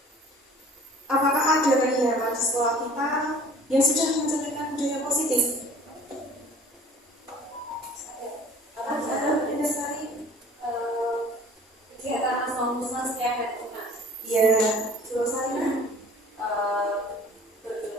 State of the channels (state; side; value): normal; both; correlation 0.48